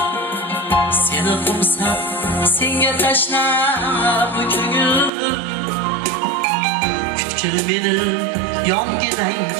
Seni qo'msab, senga tashlab bu ko'ngil, butkul meni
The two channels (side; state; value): left; drops out; at 5.1 s